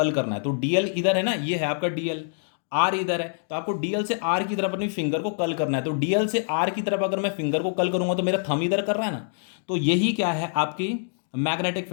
करना है। तो डीएल इधर है ना, ये है आपका डीएल, आर इधर है, तो आपको डीएल से आर की तरफ अपनी फिंगर को कर्ल करना है। तो डीएल से आर की तरफ अगर मैं फिंगर को कर्ल करूंगा तो मेरा थंब इधर कर रहा है ना, तो यही क्या है आपकी मैग्नेटिक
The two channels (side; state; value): right; silent; digital silence